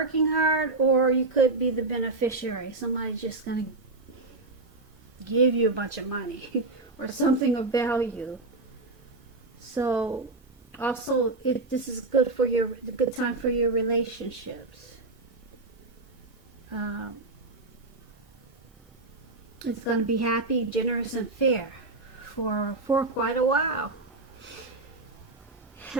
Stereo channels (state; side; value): quieter; left; 3.3 dB